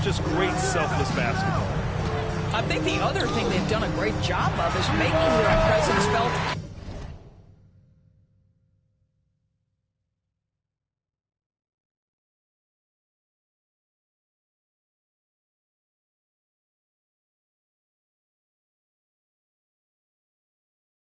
Just great selfless basketball. I think the other thing they've done a great job of is making their presence felt.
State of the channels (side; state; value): both; identical; correlation 1.00